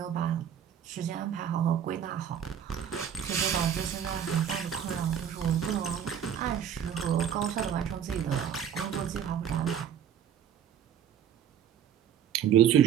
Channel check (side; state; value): left; quieter; 9.0 dB